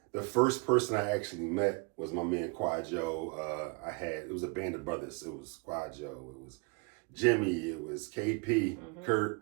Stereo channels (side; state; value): left; quieter; 30.9 dB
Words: first person I actually met was my man Quad Joe. It was a band of brothers. It was Quad Joe, it was Jimmy, it was KP,